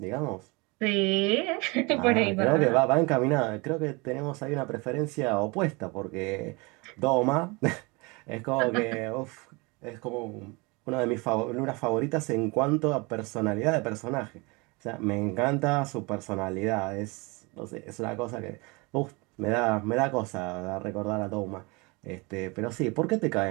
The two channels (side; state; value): left; quieter; 27.2 dB